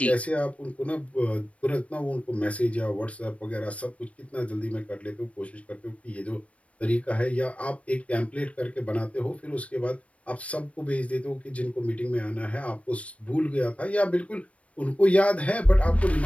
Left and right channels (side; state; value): right; late; 0.064 ms